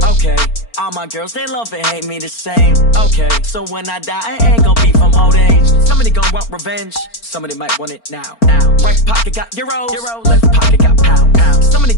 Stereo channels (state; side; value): late; right; 4.4 ms